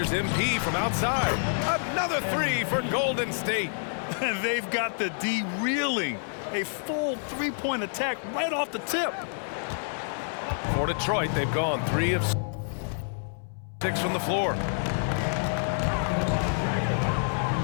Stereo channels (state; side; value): silent; right; 59 dB below the other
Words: MP from outside. Another 3 for Golden State. And they've got the D reeling. A full three-point attack right off the tip. For Detroit, they've gone 3 of 6 from the floor.